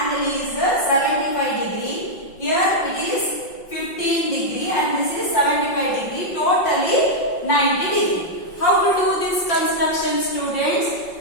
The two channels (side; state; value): right; late; 5.6 ms